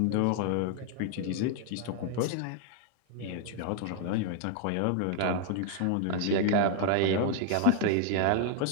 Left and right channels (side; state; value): both; different; correlation 0.00